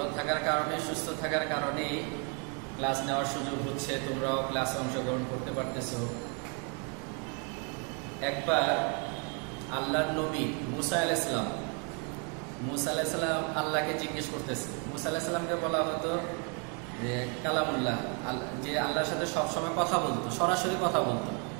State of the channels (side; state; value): left; quieter; 36.4 dB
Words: থাকার কারণে, সুস্থ থাকার কারণে ক্লাস নেওয়ার সুযোগ হচ্ছে, তোমরাও ক্লাসে অংশগ্রহণ করতে পারতেছো। একবার আল্লাহর নবী মুসা আলাইহিস সালাম আল্লাহকে জিজ্ঞেস করতেছে। মুসা আলাইহিস সালামকে বলা হতো যে কালামুল্লাহ, যে আল্লাহর সাথে সবসময় কথা বলতো, সরাসরি কথা বলতো।